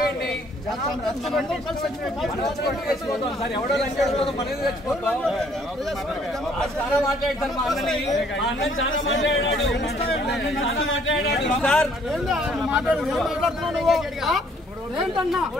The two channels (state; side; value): normal; both; correlation 0.63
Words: చచ్చిపోతాం సార్. ఎవడో చచ్చిపోతాం, మనది చచ్చిపోతాం. చాలా మాట్లాడతారు మా అన్నని, మా అన్న చాలా మాట్లాడాడు సార్. మాట్లాడుతున్నావు నువ్వు ఏంటన్నా?